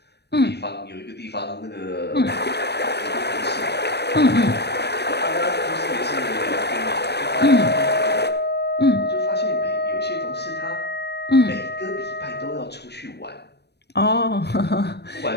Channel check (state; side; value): late; right; 0.49 ms